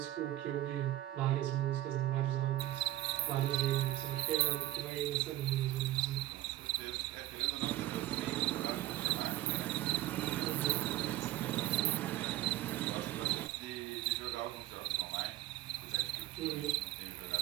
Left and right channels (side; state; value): left; quieter; 15.3 dB